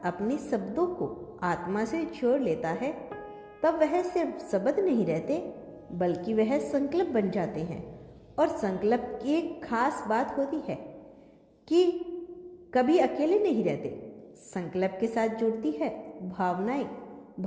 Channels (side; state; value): both; identical; correlation 1.00